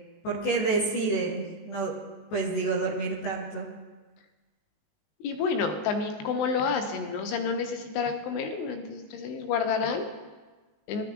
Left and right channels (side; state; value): right; late; 19 ms